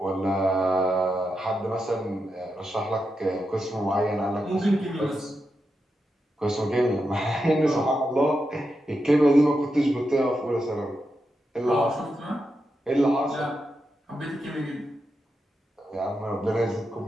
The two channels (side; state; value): both; normal; correlation 0.87